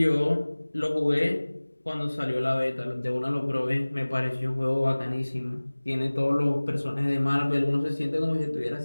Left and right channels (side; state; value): both; inverted; correlation -1.00